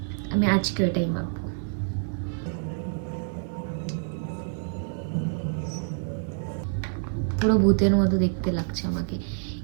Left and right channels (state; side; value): silent; left; 60 dB below the other